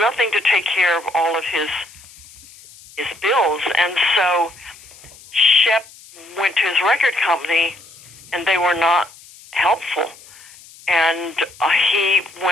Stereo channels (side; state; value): left; noise; hiss, 22 dB below the sound